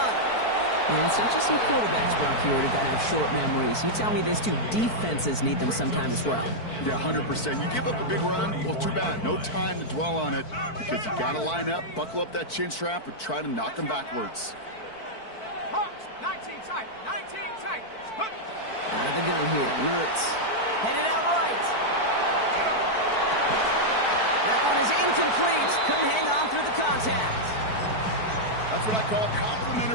And it's not just some quarterbacks, Brock, here who got to have short memories. You tell me these two defenses need them sometime as well. Yeah, 100%. You give up a big run, well, too bad. No time to dwell on it because you got to line up, buckle up that chin strap, and try to knock them backwards. Hawks, 19 tight, 19 tight. Out of the gun here, Mertz. Headed out right. That one is incomplete. Couldn't hang on through the contact. That's what I call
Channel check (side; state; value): right; late; 4.5 ms